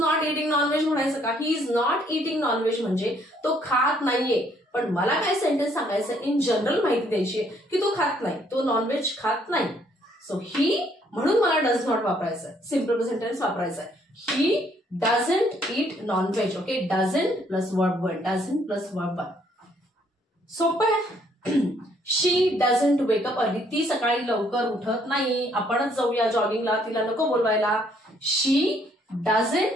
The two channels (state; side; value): normal; both; correlation 0.67